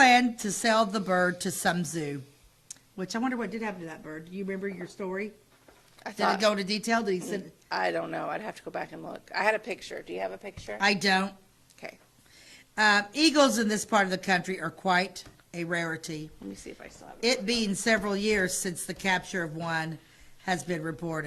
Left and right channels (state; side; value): identical; both; correlation 1.00